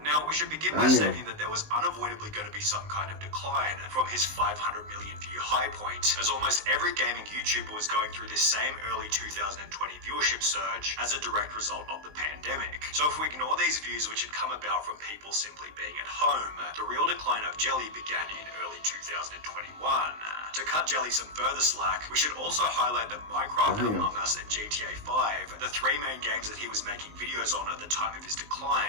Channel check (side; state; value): left; late; 19 ms